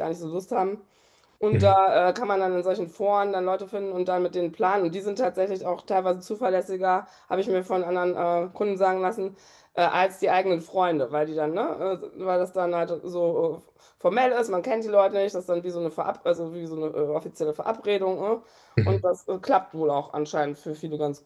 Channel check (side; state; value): both; identical; correlation 1.00